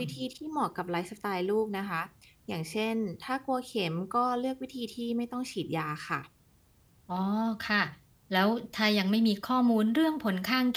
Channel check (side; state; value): both; identical; correlation 1.00